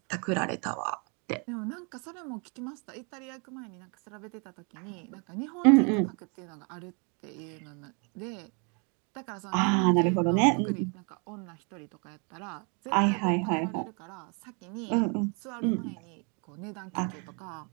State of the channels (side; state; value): left; quieter; 35.2 dB